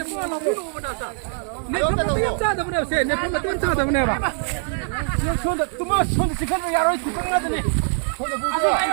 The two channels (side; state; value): left; silent; 60 dB below the other